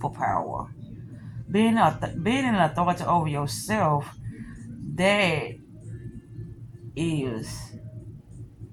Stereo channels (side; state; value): both; identical; correlation 1.00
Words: Being an authority over yourself, that is